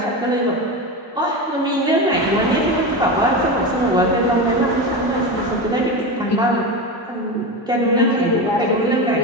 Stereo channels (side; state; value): both; normal; correlation 0.21